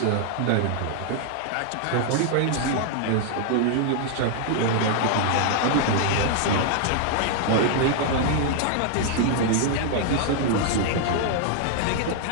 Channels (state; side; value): different; both; correlation 0.00